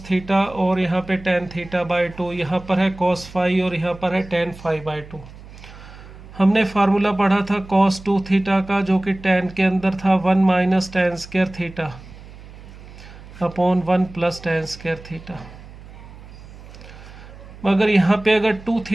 θ और यहाँ पे tan θ/2, यहाँ पर है cos φ और यहाँ पर है tan φ/2। हमने फार्मूला पढ़ा था cos 2θ का, जो कि tan के अंदर था 1 minus tan square theta upon 1 plus tan square theta. मगर यहाँ पे अगर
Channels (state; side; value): noise; right; hum, 18 dB below the sound